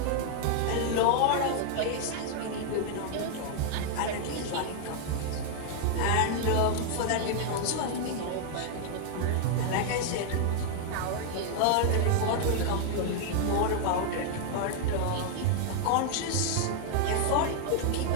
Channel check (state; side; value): different; both; correlation 0.00